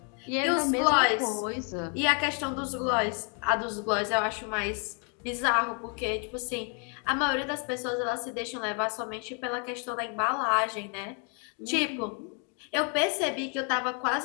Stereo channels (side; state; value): right; quieter; 38.1 dB